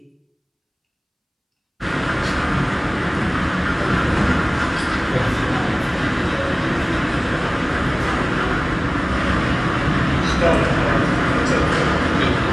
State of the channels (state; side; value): identical; both; correlation 1.00